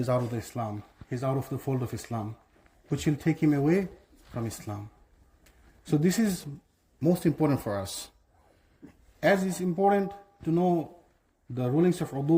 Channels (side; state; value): both; identical; correlation 1.00